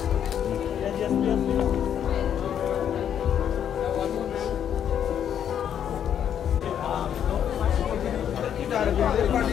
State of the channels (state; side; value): quieter; right; 9.2 dB